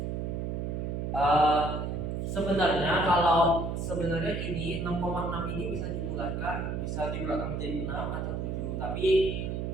Sebenarnya ini 6,6 ini bisa dibulatkan menjadi 6 atau 7, tapi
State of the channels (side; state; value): right; noise; hum, 2 dB below the sound